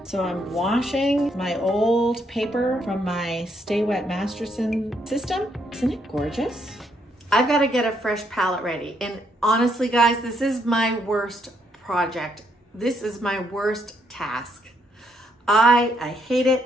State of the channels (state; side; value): normal; both; correlation 0.74